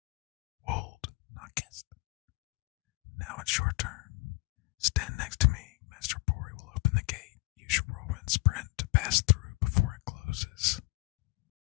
Wold, not kissed. Now it's your turn. Stand next to me. Master Bori will open the gate. Use your Whirlwind Sprint to pass through before it closes.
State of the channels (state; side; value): quieter; right; 25.6 dB